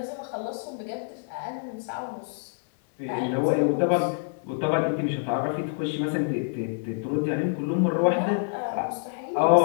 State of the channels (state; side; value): silent; right; digital silence